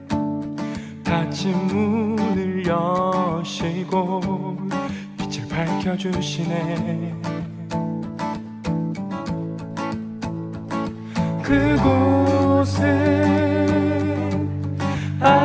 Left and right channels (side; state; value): both; identical; correlation 1.00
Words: 닫힌 문을 여시고 빛을 밝혀주시네. 그곳은